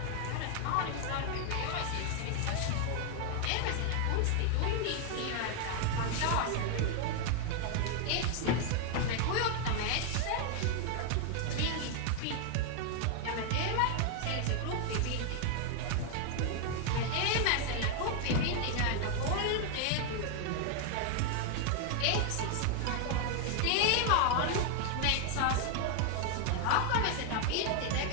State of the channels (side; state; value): both; different; correlation 0.00